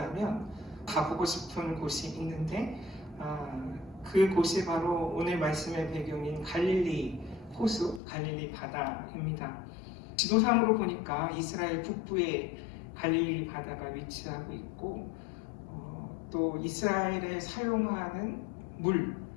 가보고 싶은 곳이 있는데 그 곳이 바로 오늘 말씀의 배경인 갈릴리 호수, 갈릴리 바다입니다. 지도상으로 보니까 이스라엘 북부에 갈릴리 바다가 위치하고 있고 또 이스라엘에 사용하는 물,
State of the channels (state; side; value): drops out; right; at 8.0 s